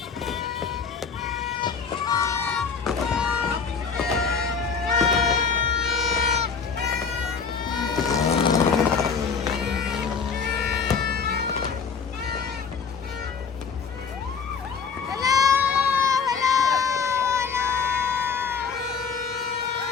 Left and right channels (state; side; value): quieter; right; 5.8 dB